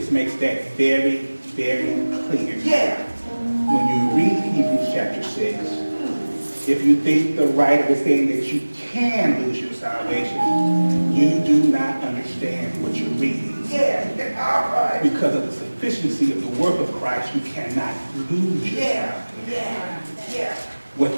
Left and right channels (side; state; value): both; inverted; correlation -1.00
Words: makes that very, very clear. When you read Hebrews chapter 6, if you think the writer is saying that you can lose your salvation, you do not understand what you're reading. Because of the sufficiency of the work of Christ, you cannot lose your salvation. What